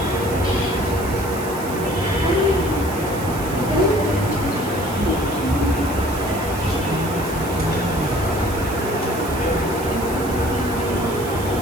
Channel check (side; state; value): right; noise; hiss, 13 dB below the sound